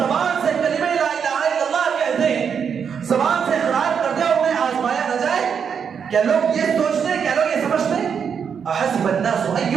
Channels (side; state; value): left; quieter; 7.0 dB